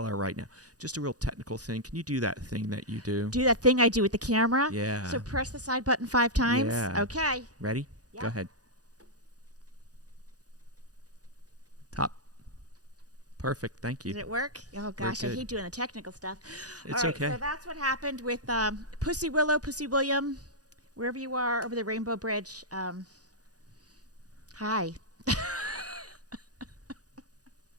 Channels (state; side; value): late; left; 0.68 ms